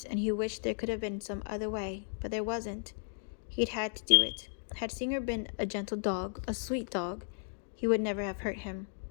and he wished there could have been some other way, but there wasn't. He'd had to do it. Had Singer been a gentle dog, a sweet dog, he would never have hurt him.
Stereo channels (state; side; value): silent; right; digital silence